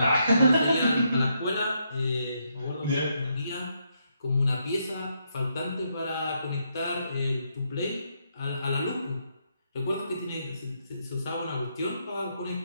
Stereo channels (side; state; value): both; inverted; correlation -0.78